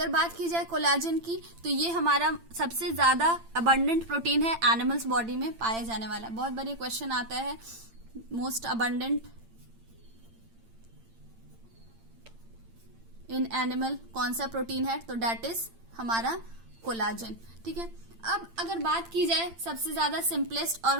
बात की जाए कोलाजन की तो ये हमारा सबसे ज्यादा अबंडेंट प्रोटीन है एनिमल्स बॉडी में पाया जाने वाला। बहुत बार ये क्वेश्चन आता है मोस्ट अबंडेंट इन एनिमल कौन सा प्रोटीन है, तो डेट इज हमारा कोलाजन। ठीक है, अब अगर बात की जाए सबसे ज्यादा सिंपलेस्ट और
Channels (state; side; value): late; left; 8.8 ms